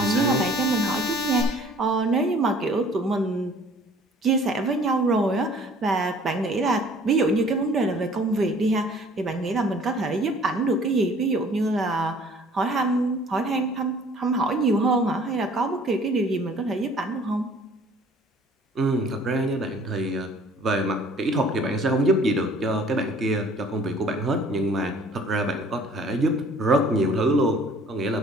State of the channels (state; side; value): normal; both; correlation 0.53